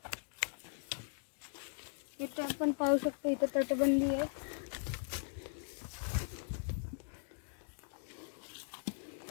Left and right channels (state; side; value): silent; right; digital silence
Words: इथे आपण पाहू शकतो इथे तटबंदी आहे.